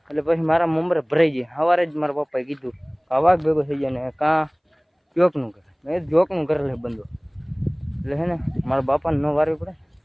એટલે પછી મારા મમરે ભરાઈ જાય સવારે જ મારા પપ્પાએ કીધું આ વાઘ ભેગો થઈ જાય ને કાં જોકનું કરે મેં જોકનું કરે લે બંધો એટલે હે ને મારા બાપાને ન વારવી પડે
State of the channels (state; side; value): identical; both; correlation 1.00